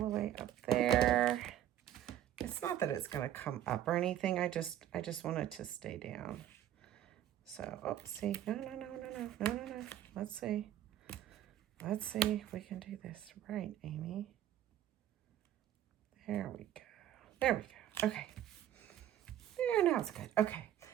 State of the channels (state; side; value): quieter; left; 11.8 dB